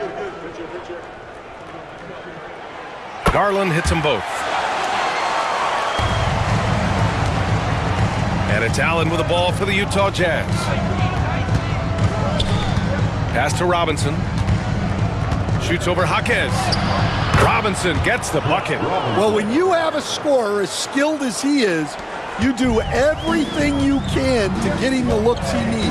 Garland hits them both. And it's Allen with the ball for the Utah Jazz. Pass to Robinson. Shoots over Jaquez. Robinson gets the bucket. Well, when you have a scorer as skilled as he is, you do everything you can to get him the looks he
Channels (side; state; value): both; identical; correlation 1.00